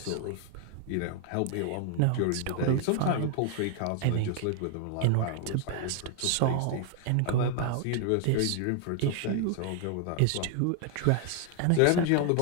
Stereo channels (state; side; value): different; both; correlation 0.00